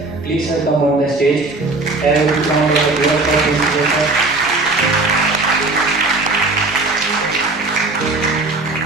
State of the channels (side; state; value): left; quieter; 3.3 dB